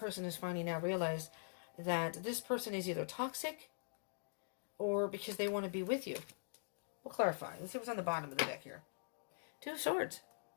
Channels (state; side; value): silent; right; digital silence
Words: has finally now realized that this person is either toxic or because they want to be with you. We'll clarify. Let's see what's on the bottom of the deck here. 2 of Swords.